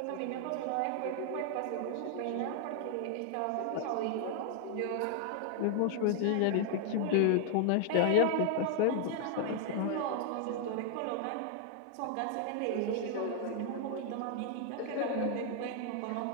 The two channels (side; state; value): both; different; correlation 0.00